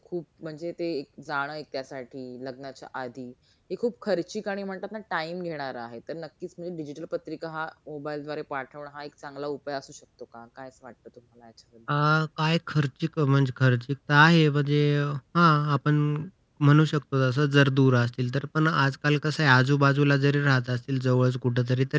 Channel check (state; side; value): identical; both; correlation 1.00